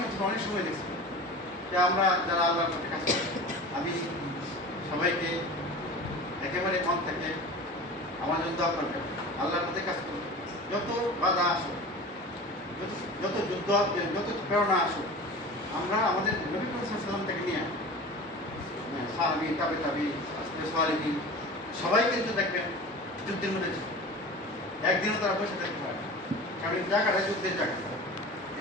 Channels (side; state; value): both; normal; correlation 0.35